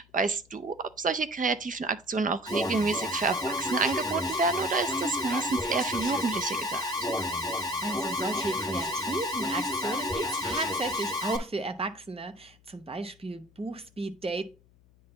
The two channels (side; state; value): left; noise; hum, 29 dB below the sound